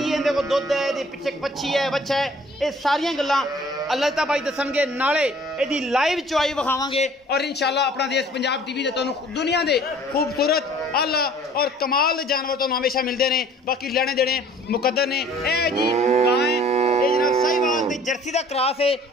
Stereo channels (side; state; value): both; normal; correlation 0.53